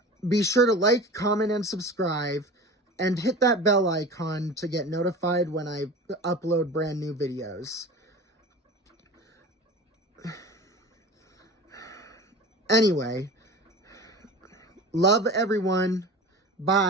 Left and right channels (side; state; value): both; normal; correlation 0.35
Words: Be sure to like, comment, and subscribe, and hit that bell icon to get notified when I upload brand new videos. Anyway, love everyone.